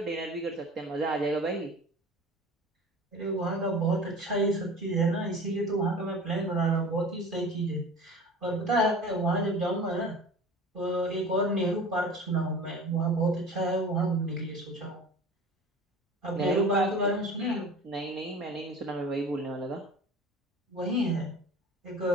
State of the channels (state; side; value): normal; both; correlation 0.39